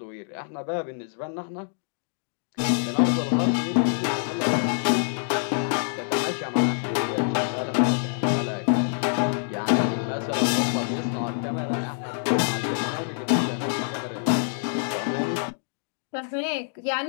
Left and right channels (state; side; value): silent; right; digital silence